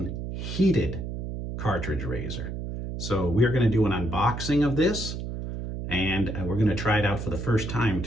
heated cartridge razor. So we're going to do an unboxing of this, and we're going to try it out for the first time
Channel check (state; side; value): noise; right; hum, 6 dB below the sound